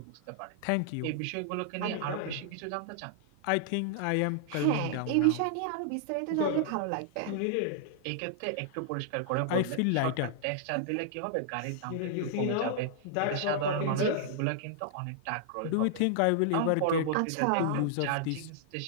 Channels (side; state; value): both; different; correlation -0.01